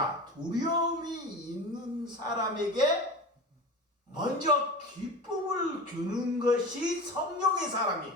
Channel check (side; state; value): both; normal; correlation 0.31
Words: 두려움이 있는 사람에게 먼저 기쁨을 주는 것이 성령의